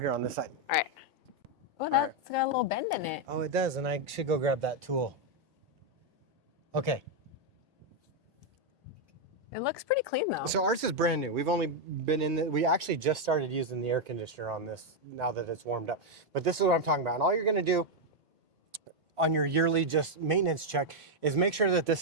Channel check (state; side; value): normal; both; correlation 0.00